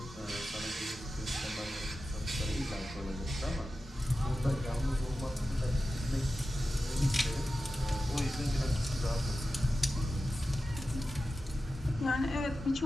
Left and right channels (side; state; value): both; normal; correlation 0.93